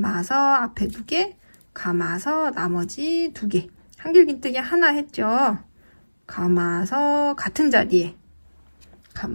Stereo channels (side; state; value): both; inverted; correlation -1.00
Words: 앞에 2개, 감아서 나머지 2개. 한길긴뜨기 하나 했죠. 감아서 같은 자리에